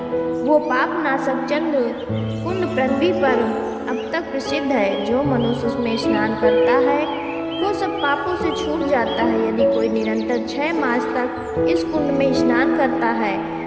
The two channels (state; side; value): identical; both; correlation 1.00